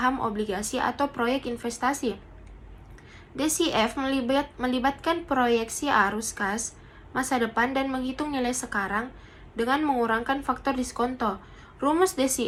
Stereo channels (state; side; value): identical; both; correlation 1.00